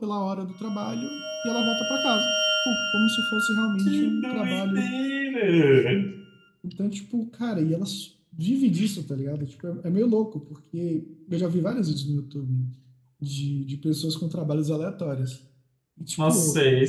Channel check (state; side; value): identical; both; correlation 1.00